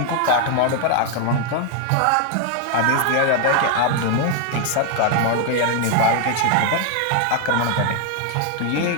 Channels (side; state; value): both; different; correlation 0.00